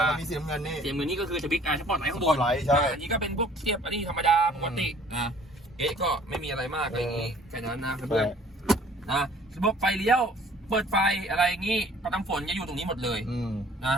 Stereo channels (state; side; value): normal; both; correlation 0.54